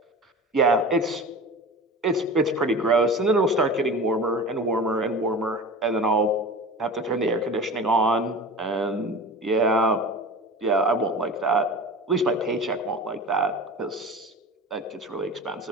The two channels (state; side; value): normal; both; correlation 0.34